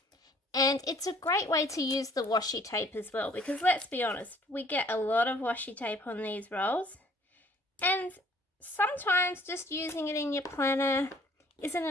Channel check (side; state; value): both; normal; correlation 0.58